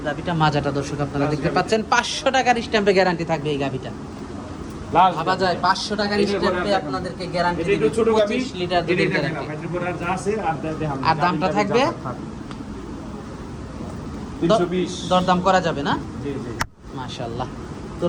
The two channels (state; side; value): identical; both; correlation 1.00